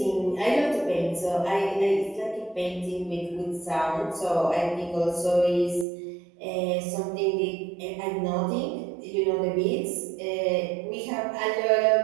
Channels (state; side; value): drops out; left; at 5.9 s